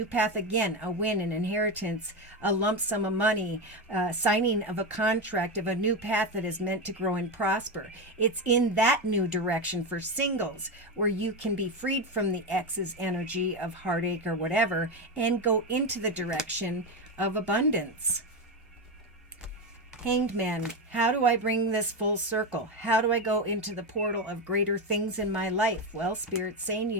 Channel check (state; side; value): normal; both; correlation 0.13